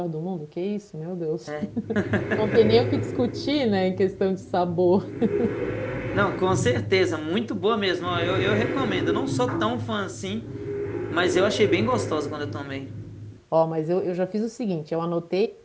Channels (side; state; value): both; identical; correlation 1.00